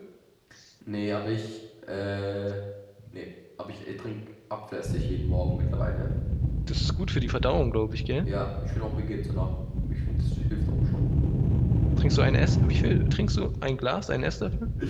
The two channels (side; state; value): both; identical; correlation 1.00